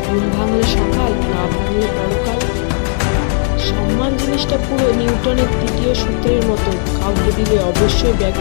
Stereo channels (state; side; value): silent; right; 70 dB below the other